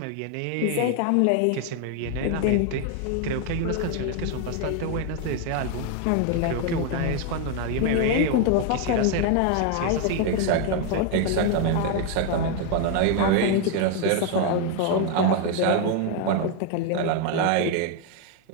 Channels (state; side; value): different; both; correlation 0.01